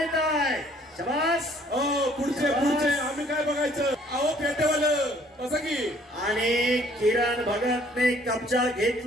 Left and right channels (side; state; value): both; normal; correlation 0.59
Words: आहे। शाबास। पुढचे पुढचे आम्ही काय बघायचं, अहो पेटेवालं असं की। आणि किरण भगतने कब्जा